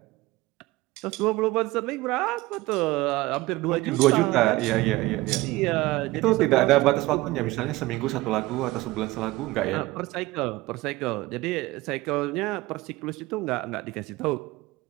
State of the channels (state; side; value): quieter; left; 19.5 dB